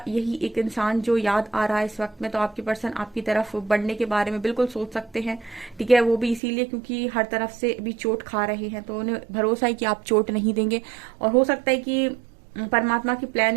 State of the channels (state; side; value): drops out; left; at 6.4 s